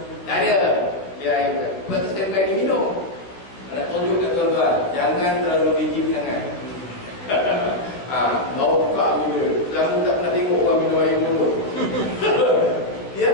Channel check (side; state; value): right; late; 15 ms